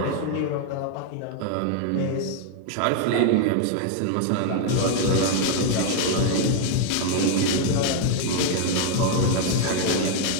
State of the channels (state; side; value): different; both; correlation 0.00